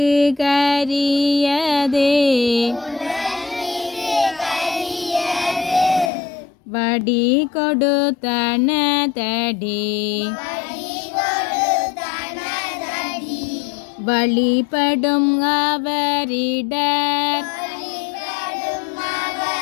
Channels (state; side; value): drops out; right; at 6.1 s